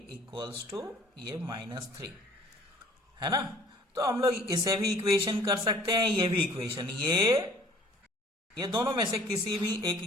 equals to ये -3, है ना। तो हम लोग इसे भी इक्वेशन कर सकते हैं, ये भी इक्वेशन, ये दोनों में से किसी भी एक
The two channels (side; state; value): both; normal; correlation 0.53